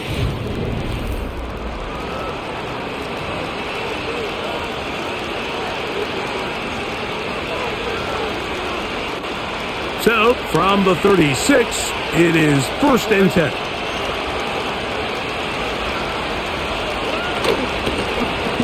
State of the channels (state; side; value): identical; both; correlation 1.00